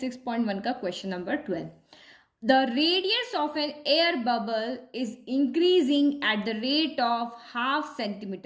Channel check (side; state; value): both; identical; correlation 1.00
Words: 6.1 का question number 12। The radius of an air bubble is increasing at the rate of 0.5